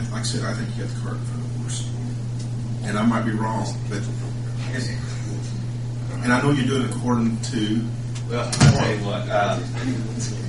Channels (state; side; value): identical; both; correlation 1.00